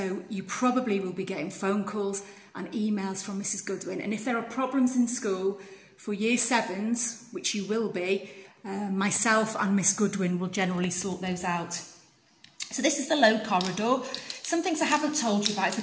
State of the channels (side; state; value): both; identical; correlation 1.00